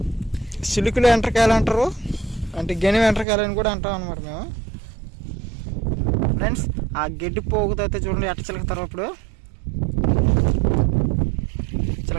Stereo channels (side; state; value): left; drops out; at 3.2 s